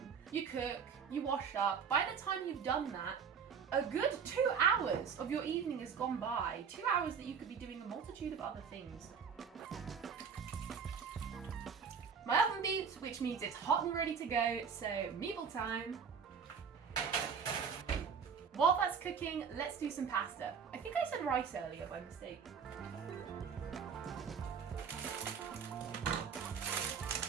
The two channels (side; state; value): left; quieter; 6.5 dB